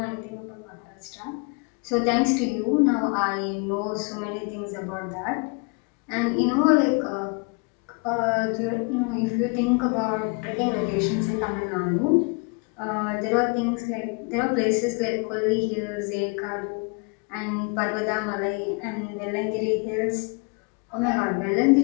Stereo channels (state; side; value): quieter; right; 33.8 dB